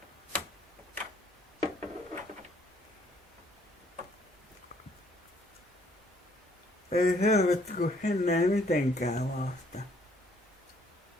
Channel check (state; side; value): normal; both; correlation 0.64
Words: Ei helvetti, kun ennen ei mitenkään vasta.